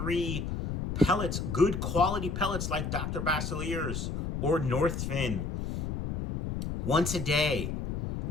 pellets, good quality pellets like Dr. Basilier's or Northfin, once a day.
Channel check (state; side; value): noise; left; rumble, 3 dB below the sound